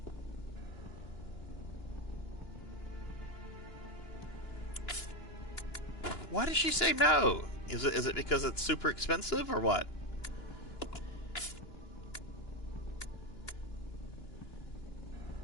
Why did she say no? Is it because it's super expensive or what?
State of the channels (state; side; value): late; right; 2.9 ms